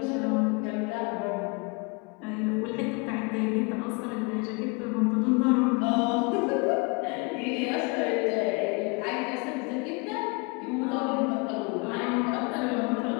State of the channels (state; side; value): quieter; right; 30.4 dB